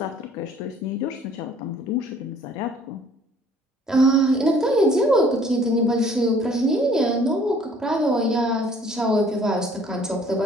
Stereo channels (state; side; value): normal; both; correlation 0.56